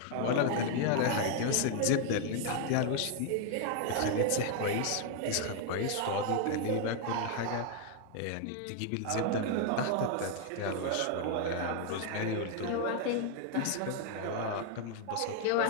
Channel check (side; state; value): both; different; correlation 0.00